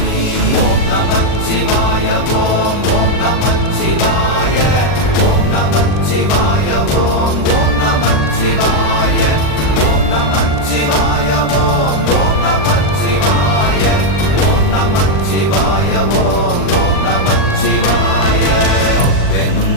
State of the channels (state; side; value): late; right; 40 ms